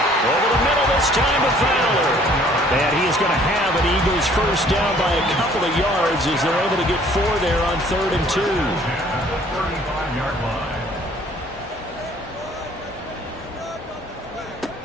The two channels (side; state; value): both; normal; correlation 0.57